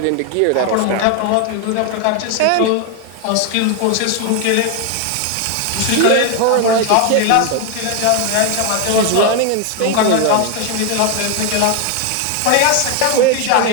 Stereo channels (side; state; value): both; different; correlation 0.01